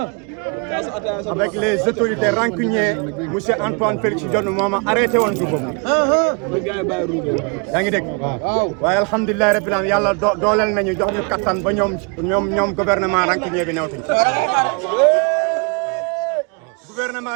avec les autorités rancunières, M. Antoine Félix Diome moo arrêté woon dugub bi. yaa ngi dégg. waaye alhamdulilah rabbil alamin yàlla dooleel nañu jox ñu kattan ba ñoom gouvernement rancunier bi newtuñ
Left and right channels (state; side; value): quieter; left; 34.2 dB